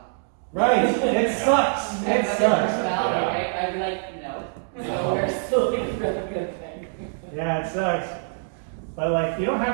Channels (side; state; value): left; silent; digital silence